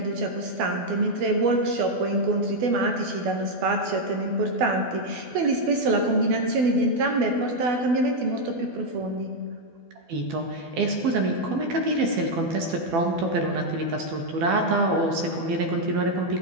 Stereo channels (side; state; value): left; late; 12 ms